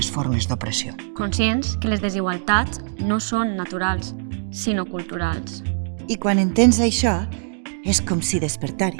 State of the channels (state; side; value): silent; left; digital silence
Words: formes d'opressió. Conscients que les desigualtats no són naturals, sinó culturals. I quan entens això, és com si